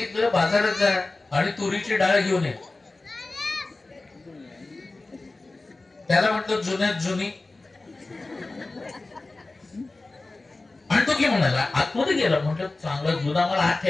बाजारात जा आणि तुरीची डाळ घेऊन ये. त्याला म्हटलं जुन्यात जुनी. आणि तो की म्हणाला आतमध्ये गेला. म्हटलं चांगला जुना मला आत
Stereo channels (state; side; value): quieter; right; 3.2 dB